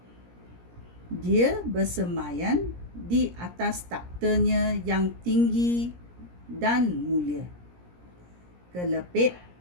Dia bersemayan di atas taktanya yang tinggi dan mulia. Kelepek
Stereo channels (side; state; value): left; late; 17 ms